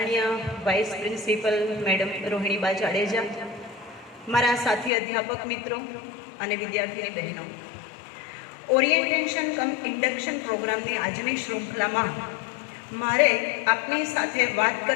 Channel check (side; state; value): right; drops out; at 4.9 s